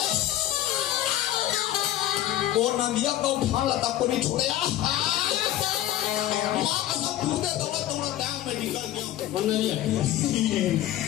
और नदिया को उठा लता को नहीं छोड़े माँ का सब कूदे दौड़ा दौड़ा टांग में निकल गया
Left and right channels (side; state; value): right; quieter; 13.5 dB